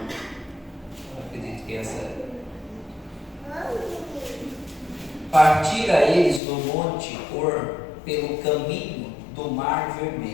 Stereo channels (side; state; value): right; drops out; at 6.4 s